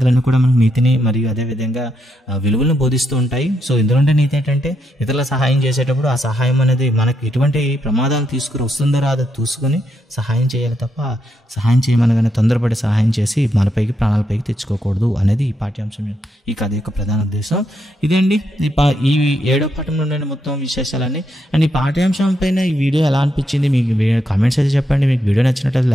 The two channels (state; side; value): normal; both; correlation 0.80